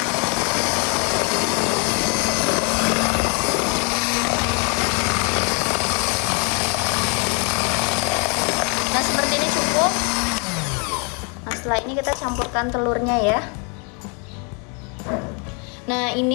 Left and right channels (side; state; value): right; quieter; 35.0 dB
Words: Nah seperti ini cukup. Nah setelah ini kita campurkan telurnya ya. Nah